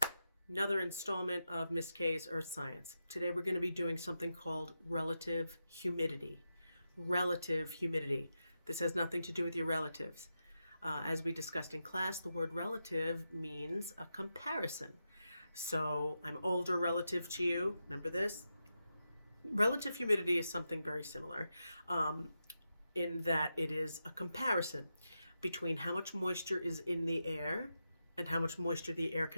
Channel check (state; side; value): inverted; both; correlation -0.88